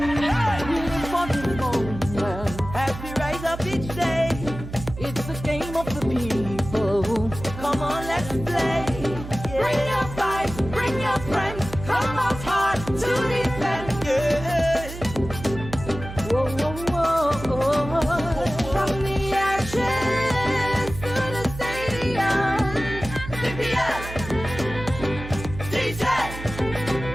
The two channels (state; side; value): noise; right; hum, 11 dB below the sound